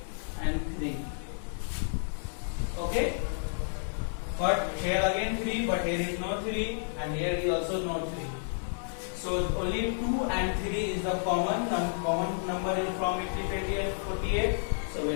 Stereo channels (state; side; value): silent; right; digital silence